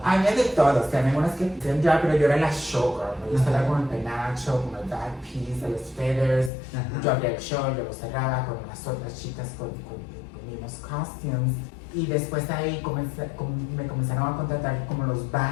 Había de todo, o sea, había unas que hacían drag, pero yo era la showgirl. Yo salía con el penacho, con el back piece, los feathers. Ajá. Yo abría el show, yo lo cerraba con las otras chicas con mismos costumes. Y después ahí me comenzaron a contratar como los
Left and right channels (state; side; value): drops out; right; at 6.5 s